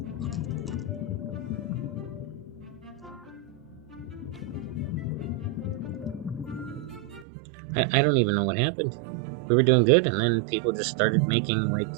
I don't even know what happened. We were doing good, and then people just started making, like,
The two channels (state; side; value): drops out; left; at 7.2 s